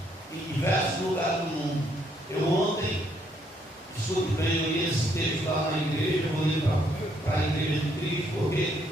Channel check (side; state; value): both; normal; correlation 0.71